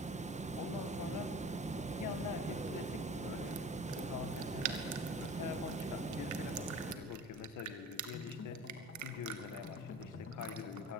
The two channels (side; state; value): both; normal; correlation 0.40